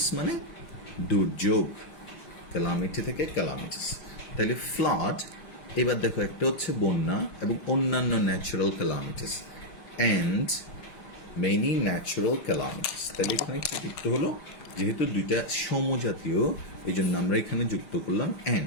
মানে দুর্যোগ, ক্যালামিটি থেকে ক্যালামিটিস। তাহলে ফ্লাড, এবার দেখো, একটা হচ্ছে বন্যা এবং অন্যান্য natural calamities, and many natural calamities. তাহলে এখানে কি যুক্ত হলো? যেহেতু দুইটা সমজাতীয়, এই জন্য আমরা এখানে যুক্ত করলাম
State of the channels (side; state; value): right; late; 5.7 ms